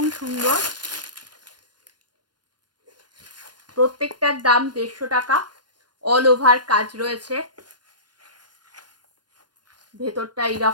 সুন্দর, প্রত্যেকটার দাম 150 টাকা। অল ওভার কাজ রয়েছে, ভেতরটা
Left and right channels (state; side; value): late; left; 0.70 ms